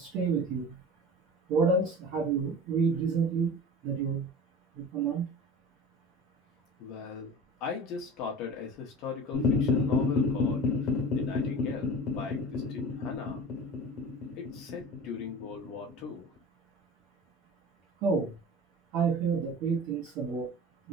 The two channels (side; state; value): both; normal; correlation 0.35